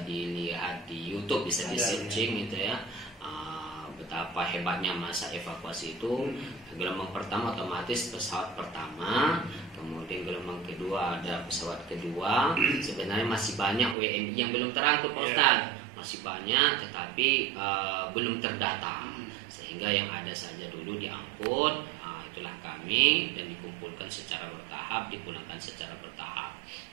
dilihat di YouTube, bisa di searching gitu ya. Betapa hebatnya masa evakuasi itu. Gelombang pertama otomatis pesawat pertama, kemudian gelombang kedua ada pesawat kedua. Sebenarnya masih banyak WNI yang belum terangkut, Pak Ustaz. Masih banyak, tetapi belum terdata. Sehingga yang ada saja dulu diangkut, itulah kami, dan dikumpulkan secara bertahap, dipulangkan secara bertahap.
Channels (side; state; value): left; drops out; at 14.0 s